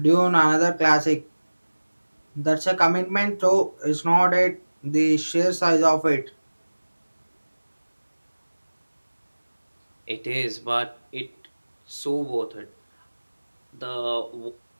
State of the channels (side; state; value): both; inverted; correlation -1.00